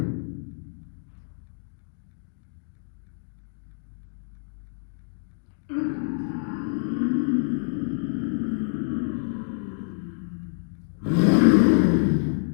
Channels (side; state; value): right; silent; digital silence